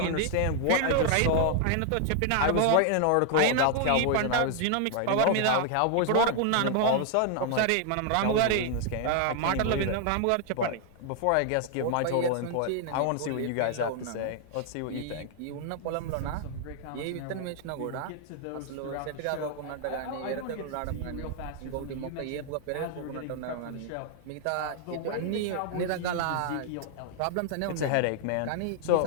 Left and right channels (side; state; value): both; different; correlation 0.00